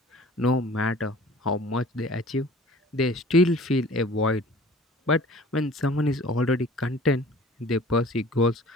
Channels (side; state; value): both; normal; correlation 0.47